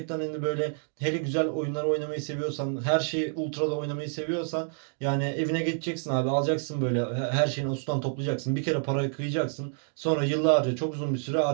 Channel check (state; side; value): silent; left; 59 dB below the other